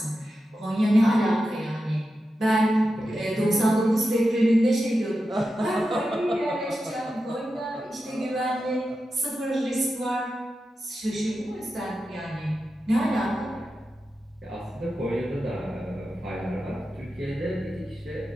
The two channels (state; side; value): normal; both; correlation 0.90